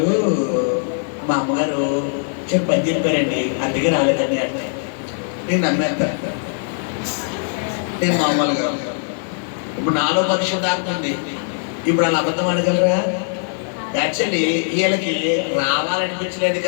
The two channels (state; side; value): silent; right; digital silence